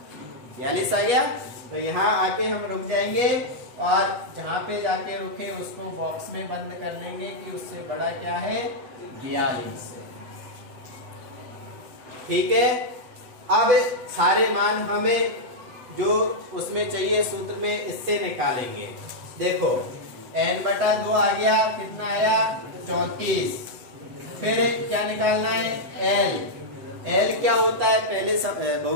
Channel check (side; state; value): left; late; 7.9 ms